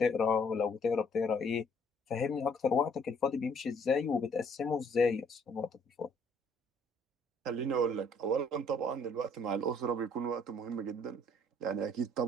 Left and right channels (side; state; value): both; normal; correlation 0.62